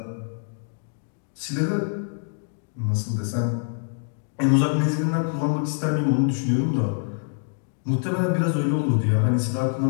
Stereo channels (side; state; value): right; silent; digital silence